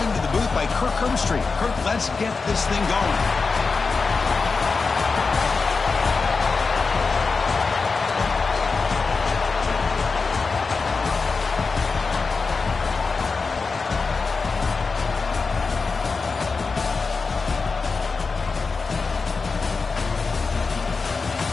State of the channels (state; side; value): quieter; right; 4.5 dB